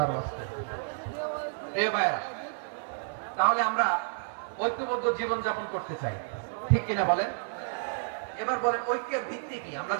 ওয়াস্তে। প্রিয় ভাইরা, তাহলে আমরা ঐক্যবদ্ধ জীবন যাপন করতে চাই, ঠিক কিনা বলেন? এবার বলেন ঐক্যের ভিত্তি কি? আমরা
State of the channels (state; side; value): silent; left; 57 dB below the other